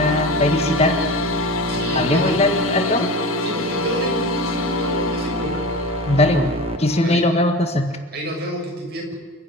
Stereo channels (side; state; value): both; normal; correlation 0.31